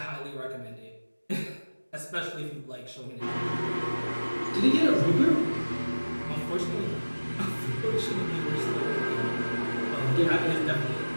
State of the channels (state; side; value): inverted; both; correlation -1.00